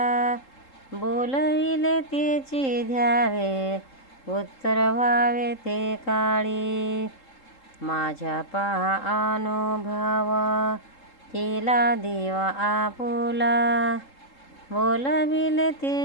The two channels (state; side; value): late; right; 3.7 ms